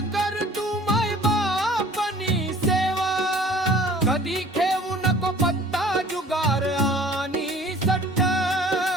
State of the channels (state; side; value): normal; both; correlation 0.50